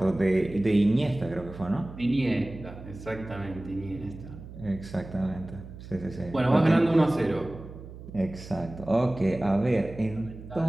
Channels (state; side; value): noise; right; hum, 14 dB below the sound